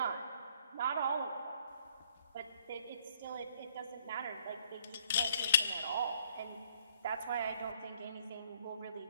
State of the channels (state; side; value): inverted; both; correlation -0.62